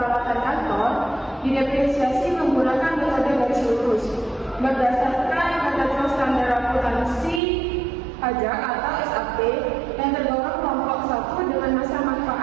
kantor didepresiasi menggunakan metode garis lurus berdasarkan ketentuan standar akuntansi pajak atau SAP yang tergolong kelompok 1 dengan masa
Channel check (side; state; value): left; drops out; at 7.4 s